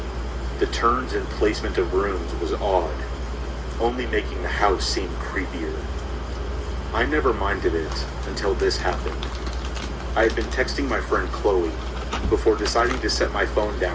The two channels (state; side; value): identical; both; correlation 1.00